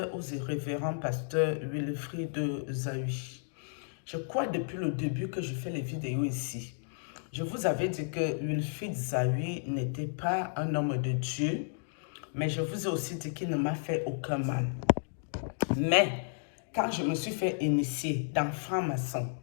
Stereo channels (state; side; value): silent; right; digital silence